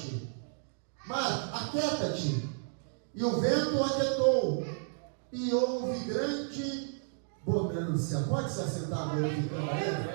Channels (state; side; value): silent; left; digital silence